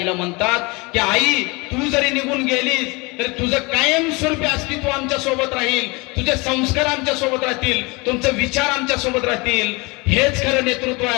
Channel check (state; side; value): quieter; right; 26.5 dB